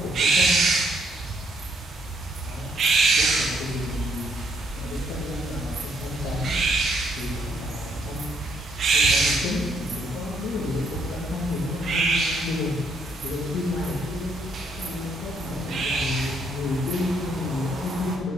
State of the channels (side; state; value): both; normal; correlation 0.71